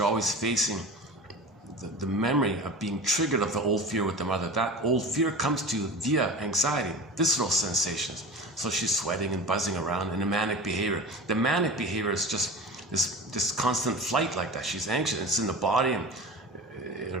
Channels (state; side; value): normal; both; correlation 0.33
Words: always facing the memory of being triggered of the old fear with the mother. That old fear comes to you via anxiety, visceral sensations. So she's sweating and buzzing around in a manic behavior. The manic behavior is just this constant flight like that. She's anxious. It's in the body and it